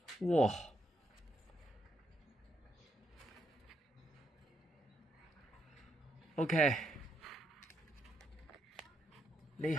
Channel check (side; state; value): both; normal; correlation 0.78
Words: 哇！OK，呢